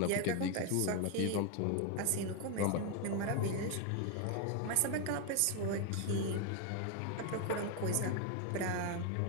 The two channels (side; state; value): both; different; correlation 0.01